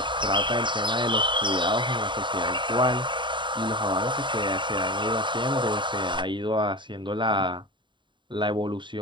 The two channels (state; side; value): late; left; 0.23 ms